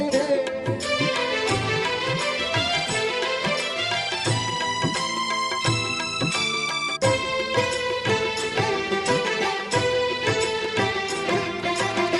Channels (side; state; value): both; identical; correlation 1.00